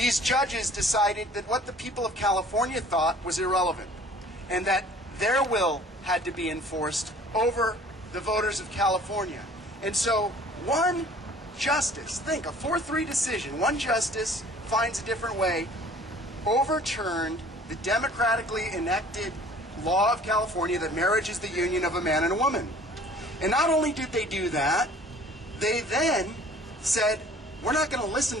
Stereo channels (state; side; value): normal; both; correlation 0.50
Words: judges decided that what the people of California thought was irrelevant, and that their will had to be enforced over the voters of California. And so one justice, think, a 4-3 decision, one justice finds a different way, overturned the democratically enacted law of California that marriage is the union of a man and a woman. And not only did they do that, they then said, we're not going to listen